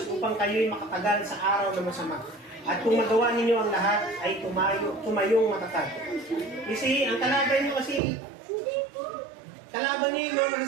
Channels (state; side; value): drops out; left; at 8.0 s